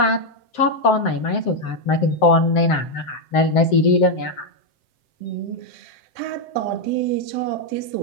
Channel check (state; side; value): late; right; 7.7 ms